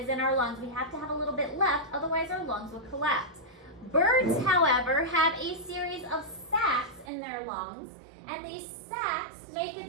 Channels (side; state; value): left; drops out; at 7.1 s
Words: in our lungs. We have to have a little bit left, otherwise our lungs would collapse. Birds, however, have a series of sacs in their lungs, and these sacs make